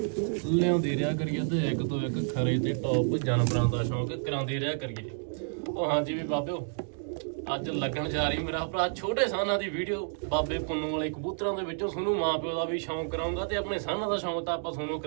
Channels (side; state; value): left; silent; digital silence